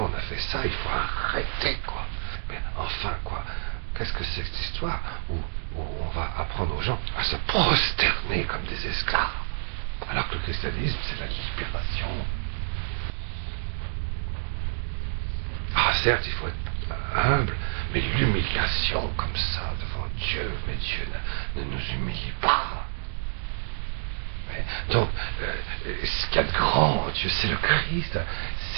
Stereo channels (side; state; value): left; silent; digital silence